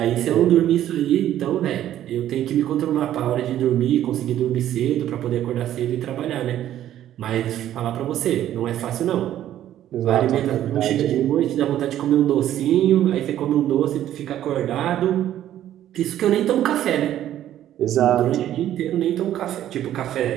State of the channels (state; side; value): quieter; left; 12.0 dB